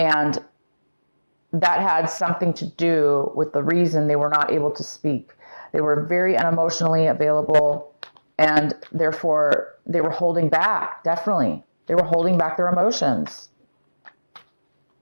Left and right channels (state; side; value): inverted; both; correlation -1.00